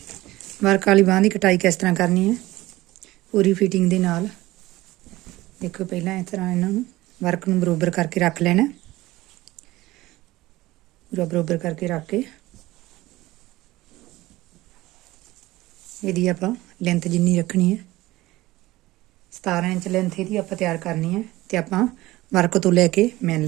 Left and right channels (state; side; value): quieter; left; 18.1 dB